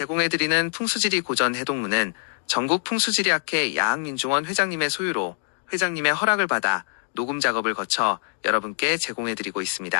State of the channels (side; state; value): right; silent; 62 dB below the other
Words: 풍수지리 고전 해동문은 전국 풍수지리학회 야학민중원 회장님의 소유로 회장님의 허락을 받아 녹음 작업을 거쳐 여러분께 제공해드리고